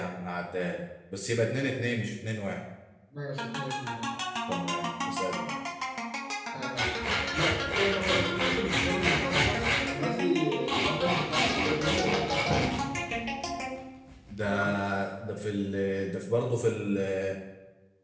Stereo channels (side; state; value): both; identical; correlation 1.00